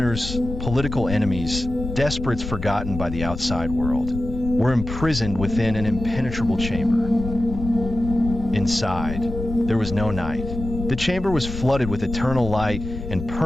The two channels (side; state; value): left; noise; rumble, 8 dB below the sound